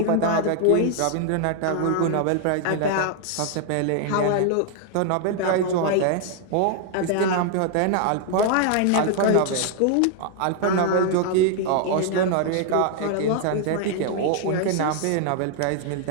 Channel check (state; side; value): different; both; correlation 0.00